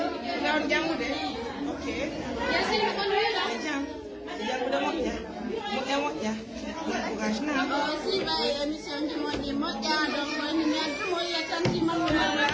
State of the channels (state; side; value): identical; both; correlation 1.00